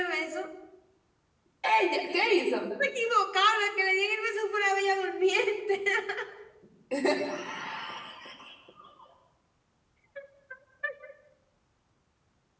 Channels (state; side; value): identical; both; correlation 1.00